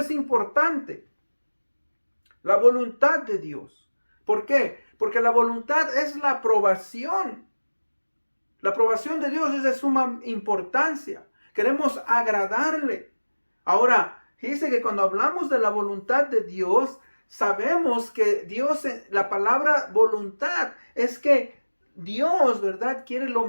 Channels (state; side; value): inverted; both; correlation -1.00